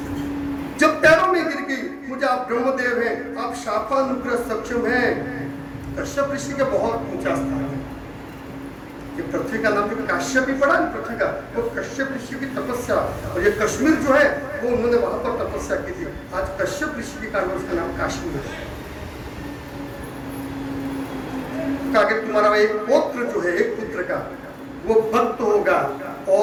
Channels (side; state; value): both; identical; correlation 1.00